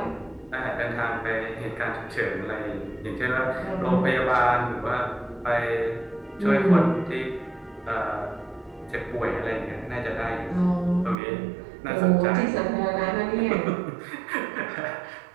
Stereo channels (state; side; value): drops out; left; at 11.2 s